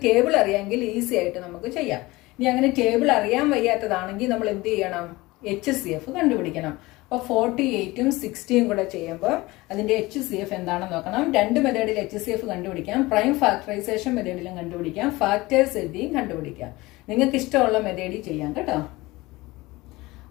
ടേബിൾ അറിയാമെങ്കിൽ ഈസി ആയിട്ട് നമുക്ക് ചെയ്യാം. ഇനി അങ്ങനെ ടേബിൾ അറിയാൻ വയ്യാത്തതാണെങ്കിൽ നമ്മൾ എന്ത് ചെയ്യണം? HCF കണ്ടുപിടിക്കണം. അപ്പോൾ 48ഉം 60ഉം കൂടെ ചെയ്യുമ്പോൾ അതിന്റെ HCF എന്താണെന്ന് നോക്കണം. 2 മെത്തേഡിൽ HCF കണ്ടുപിടിക്കാം. പ്രൈം ഫാക്ടറൈസേഷൻ മെത്തേഡിലും കണ്ടുപിടിക്കാം. ഫാക്ടേഴ്സ് എഴുതിയും കണ്ടുപിടിക്കാം. നിങ്ങൾക്ക് ഇഷ്ടമുള്ള മെത്തേഡിൽ ചെയ്യാം കേട്ടോ.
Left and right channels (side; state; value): right; quieter; 20.8 dB